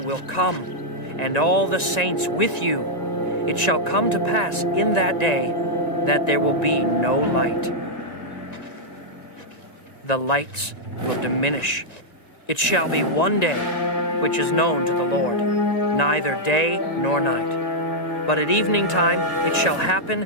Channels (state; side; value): late; right; 1.9 ms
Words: come, and all the saints with you. It shall come to pass in that day that there will be no light. The lights will diminish. It shall be one day which is known to the Lord, neither day nor night. But at evening time it shall happen